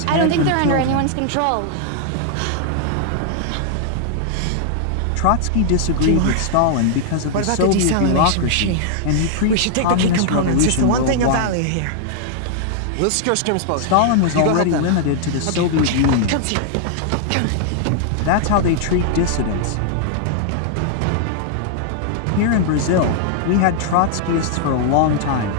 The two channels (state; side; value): different; both; correlation -0.01